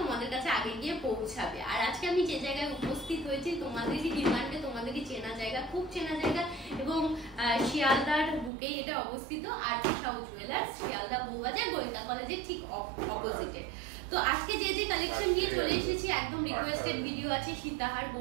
তোমাদের কাছে আগে গিয়ে পৌঁছাবে। আর আজকে আমি যে জায়গায় উপস্থিত হয়েছি তোমাদেরই ডিমান্ডে, তোমাদেরই চেনা জায়গা, খুব চেনা জায়গা এবং শিয়ালদার বুকেই এটা অবস্থিত। আরপি সাউ জুয়েলার্স, শিয়ালদা বউবাজার, গোয়েন্দা কলেজের ঠিক অপোজিটে। তো আজকে যে যে কালেকশন নিয়ে চলে এসেছি, একদম রিকোয়েস্টেড ভিডিও আছে। সীতাহার,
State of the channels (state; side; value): drops out; left; at 8.5 s